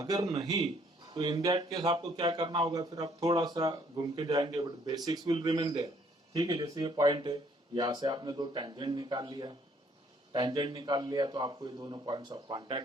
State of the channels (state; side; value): normal; both; correlation 0.64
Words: नहीं तो इन दैट केस आपको क्या करना होगा, फिर आप थोड़ा सा घूम के जाएंगे, but basics will remain there, ठीक है। जैसे ये पॉइंट है, यहाँ से आपने दो टेंजेंट निकाल लिया, टेंजेंट निकाल लिया तो आपको ये दोनों पॉइंट्स ऑफ